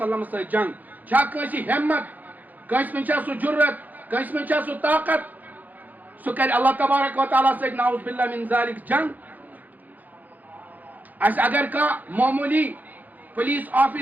ست جنگ چھا کنسی ہمت کنس من چھا سو جرت کنس من چھا سو طاقت سہ کر اللہ تبارک و تعالی ست نعوذ باللہ من ذالک جنگ اس اگر کا معمولی پولیس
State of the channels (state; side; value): late; left; 0.082 ms